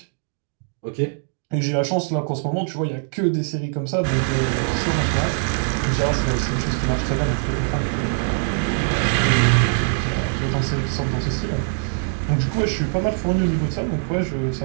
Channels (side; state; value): left; silent; digital silence